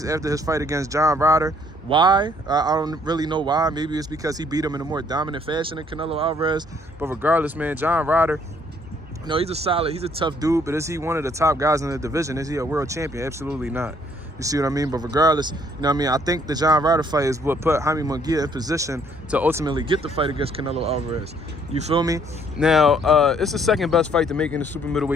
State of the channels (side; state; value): both; normal; correlation 0.64